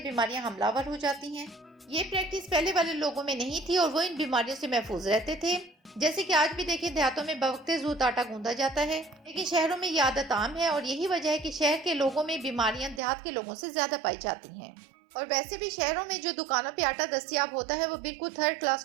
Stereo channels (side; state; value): left; drops out; at 13.0 s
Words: حملہ آور ہو جاتی ہیں۔ یہ پریکٹس پہلے والے لوگوں میں نہیں تھی اور وہ ان بیماریوں سے محفوظ رہتے تھے، جیسے کہ آج بھی دیکھیں دیہاتوں میں بوقت زود آٹا گوندھا جاتا ہے، لیکن شہروں میں یہ عادت عام ہے، اور یہی وجہ ہے کہ شہر کے لوگوں میں بیماریاں دیہات کے لوگوں سے زیادہ پائی جاتی ہیں۔ اور ویسے بھی شہروں میں جو دکانوں پہ آٹا دستیاب ہوتا ہے وہ بالکل تھرڈ کلاس